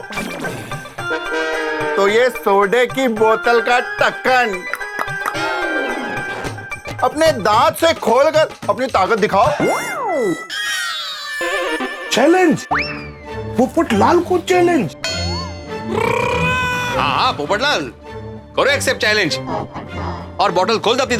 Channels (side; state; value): both; identical; correlation 1.00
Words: तो ये सोडे की बोतल का ढक्कन अपने दांत से खोलकर अपनी ताकत दिखाओ। चैलेंज, पोपटलाल को चैलेंज। हाँ पोपटलाल, करो एक्सेप्ट चैलेंज और बॉटल खोल दो अपनी